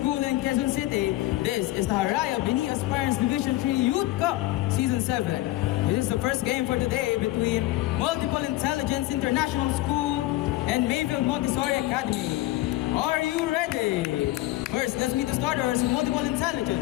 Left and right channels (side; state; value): right; quieter; 17.1 dB